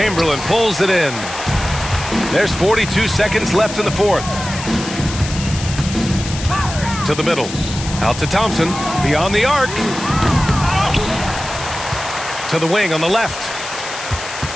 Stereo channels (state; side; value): noise; left; hiss, 10 dB below the sound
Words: pulls it in. There's 42 seconds left in the fourth. To the middle. Out to Thompson. Beyond the arc. To the wing on the left.